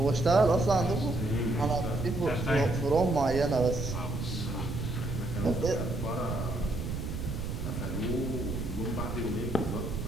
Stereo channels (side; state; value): right; noise; rumble, 4 dB below the sound